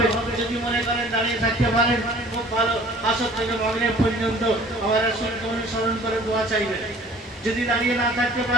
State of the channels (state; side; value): normal; both; correlation 0.51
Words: যদি মনে করেন দাঁড়িয়ে থাকতে পারেন খুব ভালো, আসর থেকে মাগরিব পর্যন্ত আমার রাসূলকে অনুসরণ করে দোয়া চাইবেন। যদি দাঁড়িয়ে না থাকতে